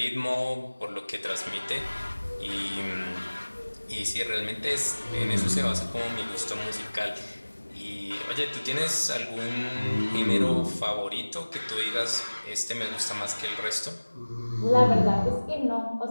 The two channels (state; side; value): inverted; both; correlation -1.00